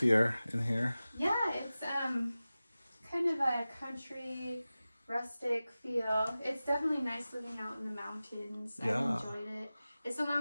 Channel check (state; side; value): inverted; both; correlation -0.96